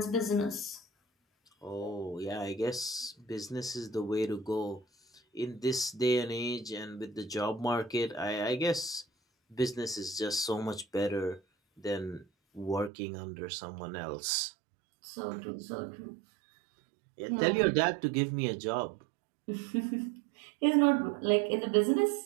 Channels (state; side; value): drops out; left; at 12.9 s